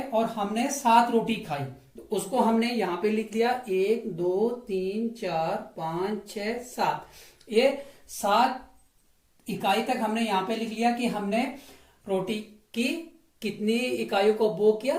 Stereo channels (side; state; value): both; identical; correlation 1.00